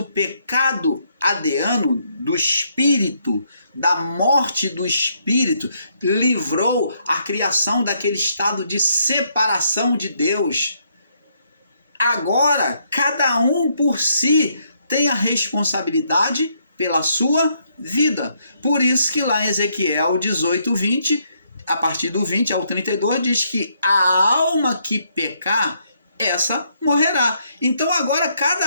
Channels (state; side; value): inverted; both; correlation -0.73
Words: pecado adeano do espírito, da morte do espírito, livrou a criação daquele estado de separação de Deus. Agora, cada um por si tem a responsabilidade pela sua vida. Por isso que lá em Ezequiel 18, 20, a partir do 20 ao 32, diz que a alma que pecar, essa morrerá. Então agora